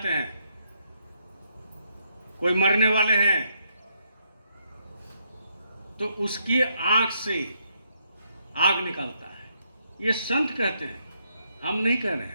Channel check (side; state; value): both; inverted; correlation -0.75